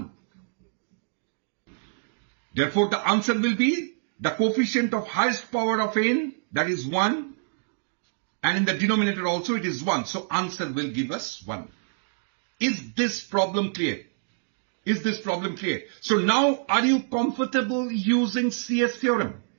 Therefore the answer will be the coefficient of highest power of n, that is 1. And in the denominator also it is 1. So answer will give us 1. Is this problem clear? Is this problem clear? So now are you comfortable using CS theorem?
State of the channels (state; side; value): silent; left; digital silence